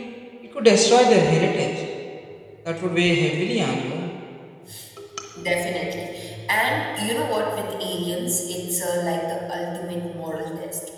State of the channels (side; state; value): both; identical; correlation 1.00